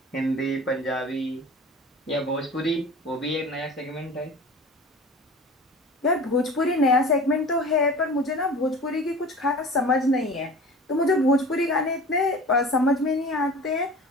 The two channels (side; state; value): both; normal; correlation 0.38